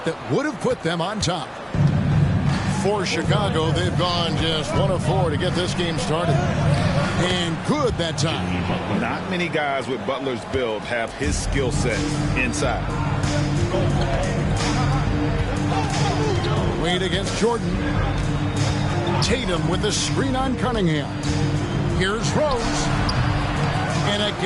that would have put them on top. For Chicago, they've gone just 1 of 4 to get this game started. And good that time. Not many guys with Butler's build have his skill set inside. Wade against Jordan. Tatum with the screen on Cunningham. Here's Rose. And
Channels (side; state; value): both; identical; correlation 1.00